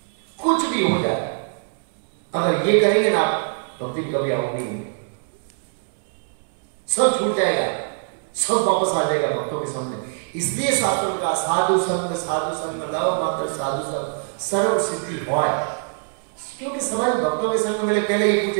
कुछ भी हो जाए। अगर ये करेंगे ना भक्ति कभी आउट नहीं होगी, सब छूट जाएगा, सब वापस आ जाएगा भक्तों के सामने। इसलिए शास्त्र का साधु संग लाओ मात्र साधु संग सर्व सिद्धि होय। क्योंकि समाज भक्तों के संग में पहले ही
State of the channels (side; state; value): left; silent; 60 dB below the other